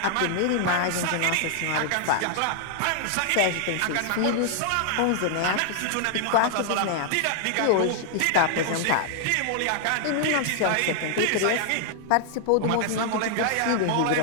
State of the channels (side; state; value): both; different; correlation 0.00